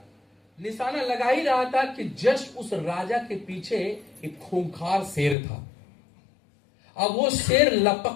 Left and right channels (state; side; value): drops out; right; at 5.4 s